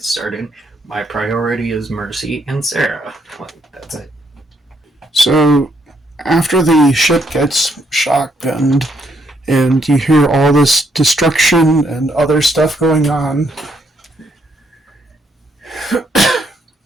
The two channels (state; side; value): normal; both; correlation 0.74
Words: started, my priority is Mercy and Sarah. That's it. So, after the ship gets shotgunned and you hear all this destruction and other stuff going on,